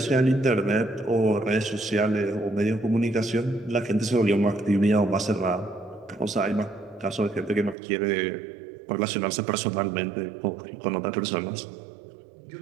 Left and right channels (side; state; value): left; drops out; at 7.8 s